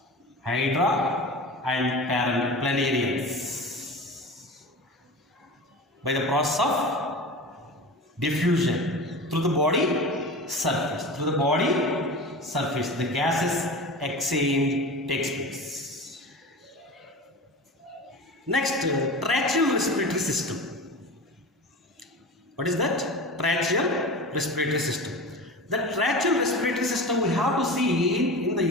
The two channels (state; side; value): normal; both; correlation 0.32